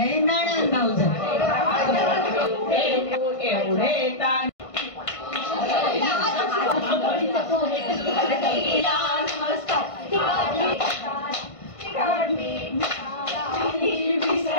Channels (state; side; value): late; right; 1.5 ms